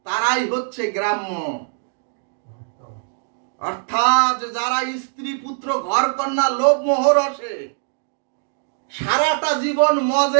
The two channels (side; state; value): left; silent; digital silence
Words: তারাই হচ্ছে গ্রাম্য। অর্থাৎ যারা স্ত্রী, পুত্র, ঘর, কন্যা, লোভ, মোহ রসে সারাটা জীবন